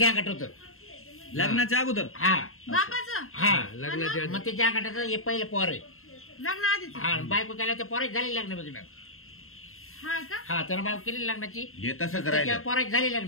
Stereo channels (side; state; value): right; late; 0.62 ms